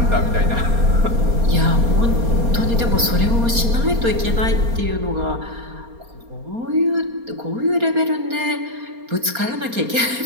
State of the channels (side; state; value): left; late; 4.3 ms